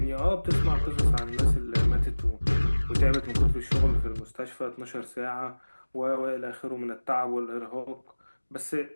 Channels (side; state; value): both; inverted; correlation -1.00